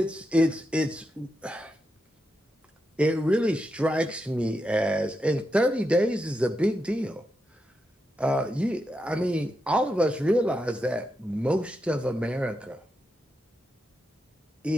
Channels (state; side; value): normal; both; correlation 0.86